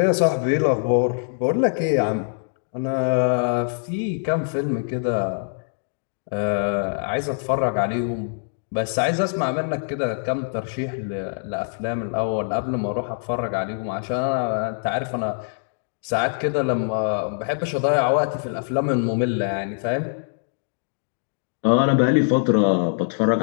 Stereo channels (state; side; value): silent; right; digital silence